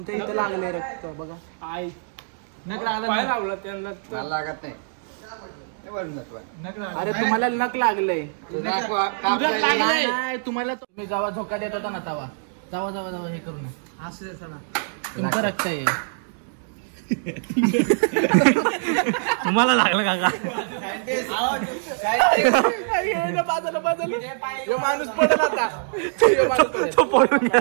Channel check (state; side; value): silent; left; digital silence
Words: इथं लागले रक्त बघा. पाय लावला त्यांना लागत नाही. अरे तुम्हाला नख लागलंय. नाही तुम्हाला तुम्ही जेव्हा झोका देत होता ना तेव्हा जावा हे करू ना. तुमचं रक्त आहे. तुम्हाला लागलं काका? माणूस पडेल आता. तो पडून